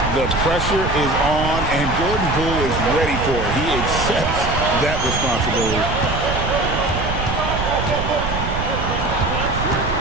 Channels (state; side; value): noise; right; rumble, 4 dB below the sound